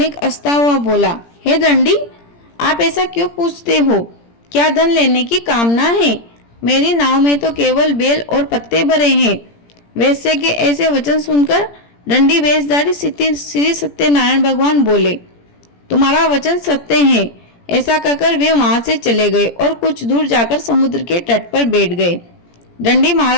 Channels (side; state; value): right; late; 17 ms